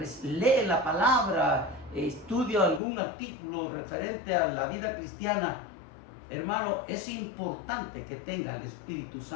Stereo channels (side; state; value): right; drops out; at 2.8 s